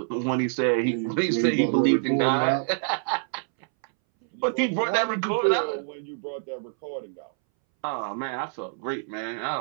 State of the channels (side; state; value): left; silent; 61 dB below the other